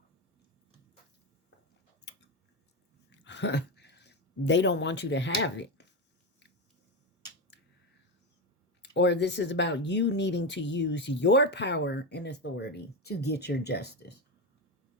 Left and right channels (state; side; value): normal; both; correlation 0.14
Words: they don't want you to have it. Or this is about you needing to use your power and authority to get your justice.